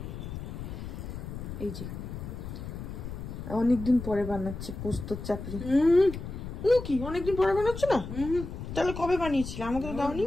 এই যে অনেকদিন পরে বানাচ্ছে পোস্ত চাপড়ি। কি অনেকদিন পরে বানাচ্ছে না? তাহলে কবে বানিয়েছিলে? আমাকে তো দাওনি।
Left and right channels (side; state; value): left; noise; rumble, 8 dB below the sound